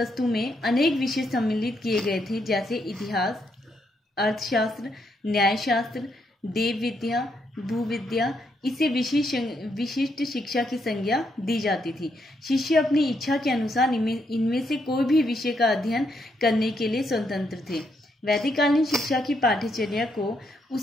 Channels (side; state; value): both; normal; correlation 0.77